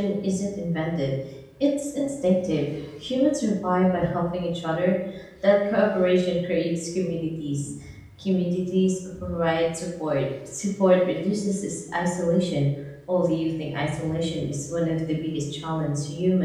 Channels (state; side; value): identical; both; correlation 1.00